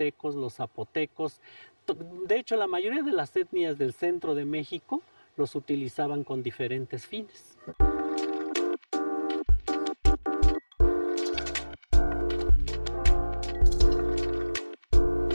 los zapotecos. De hecho, la mayoría de las etnias del centro de México los utilizaban con diferentes fines.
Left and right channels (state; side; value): inverted; both; correlation -1.00